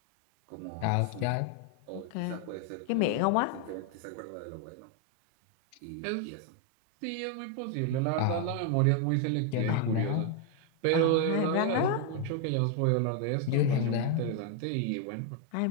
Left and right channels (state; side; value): different; both; correlation 0.01